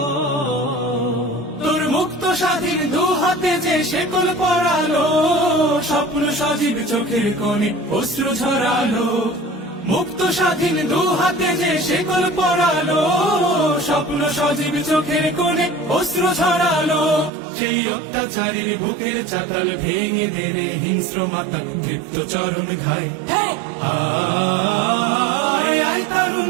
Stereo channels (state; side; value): drops out; left; at 17.3 s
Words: তোর মুক্ত স্বাধীন দু হাতে যে শেকল পরালো, স্বপ্ন সজীব চোখের কোণে অশ্রু ঝরালো, মুক্ত স্বাধীন দু হাতে যে শেকল পরালো, স্বপ্ন সজীব চোখের কোণে অশ্রু ঝরালো, সেই অত্যাচারীর বুকের চাতাল ভেঙে দেনে হিংস্র মাতা তৃপ্ত চরণ ঘায়। আয় আয়